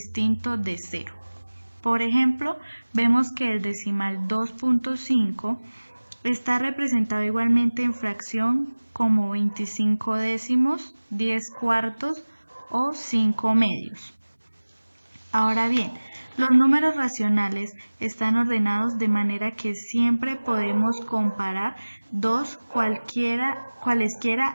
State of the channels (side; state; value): both; inverted; correlation -1.00